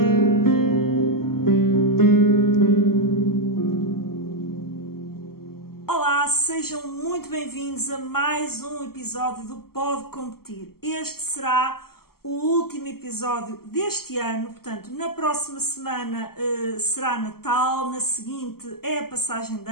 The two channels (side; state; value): right; late; 0.94 ms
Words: Olá, sejam muito bem-vindos a mais um episódio do Pode Competir. Este será o último episódio deste ano, portanto, na próxima semana será Natal, na seguinte é a passagem de